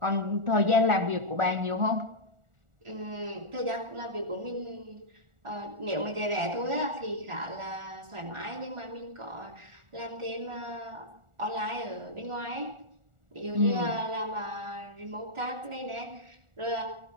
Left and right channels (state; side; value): late; left; 1.4 ms